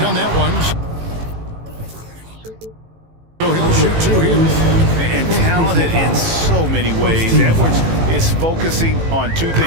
on that one. So he'll shoot two here. And talented in so many ways. Edwards is focusing on two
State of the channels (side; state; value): left; late; 18 ms